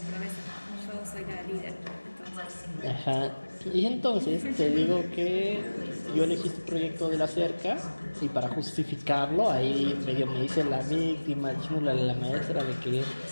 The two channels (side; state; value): both; inverted; correlation -1.00